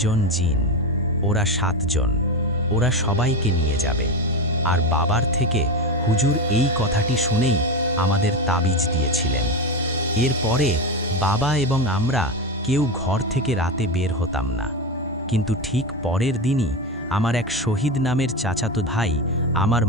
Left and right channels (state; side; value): normal; both; correlation 0.17